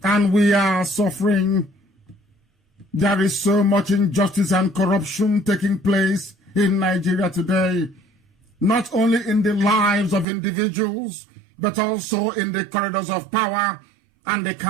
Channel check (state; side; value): drops out; left; at 10.2 s